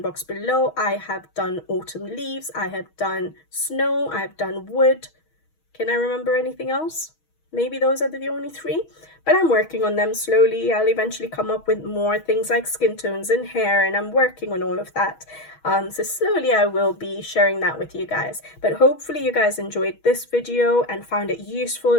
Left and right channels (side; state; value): right; late; 6.3 ms